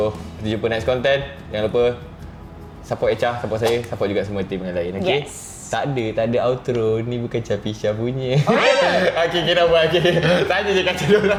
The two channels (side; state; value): both; identical; correlation 1.00